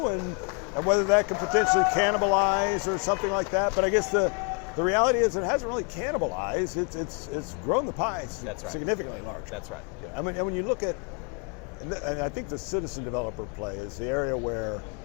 and whether that could potentially cannibalize or something like that. But I guess the reality is it hasn't really cannibalized. It's grown the pie significantly larger. That's right. I mean, and when you look at, and I think the citizen developer play is the area where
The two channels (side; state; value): right; quieter; 36.2 dB